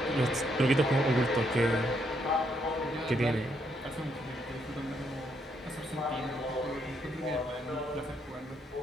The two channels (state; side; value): normal; both; correlation 0.75